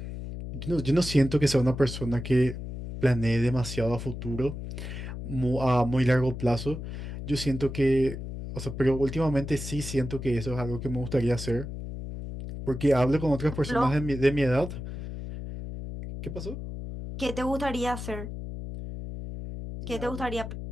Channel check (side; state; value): left; noise; hum, 8 dB below the sound